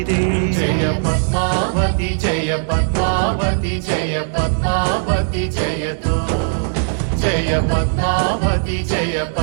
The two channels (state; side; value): silent; left; digital silence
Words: ಜಯ ಪದ್ಮಾವತಿ ಜಯ ಪದ್ಮಾವತಿ ಜಯ ಪದ್ಮಾವತಿ ಜಯತು ಜಯ ಪದ್ಮಾವತಿ ಜಯ